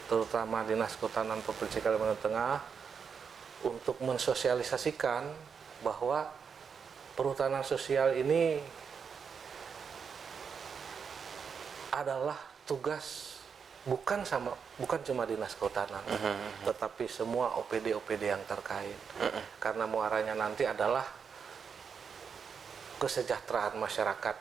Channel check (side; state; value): left; quieter; 6.4 dB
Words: terutama Dinas Kehutanan Provinsi Kalimantan Tengah, untuk mensosialisasikan bahwa perhutanan sosial ini adalah tugas bukan cuma Dinas Kehutanan, tetapi semua OPD-OPD yang terkait. Karena muaranya nanti adalah kesejahteraan masyarakat